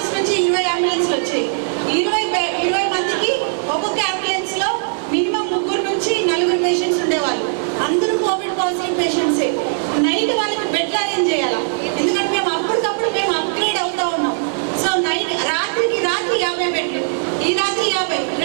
నుంచి 20 అంబులెన్స్లు వచ్చాయి. 20 మందికి ఒక్కొక్క అంబులెన్స్లో మినిమం 3 నుంచి 4 పేషెంట్స్ ఉండేవాళ్ళు. అందరూ కోవిడ్ పాజిటివ్ పేషెంట్సే. నైట్ వాళ్ళకి బెడ్లు అరేంజ్ చేయాలా, ఎందుకంటే మేము అప్పటికప్పుడు అప్గ్రేడ్ అవుతా ఉన్నాం. సో రాత్రికి 50 బెడ్లు, ఈ రాత్రి 50,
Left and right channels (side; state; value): left; silent; digital silence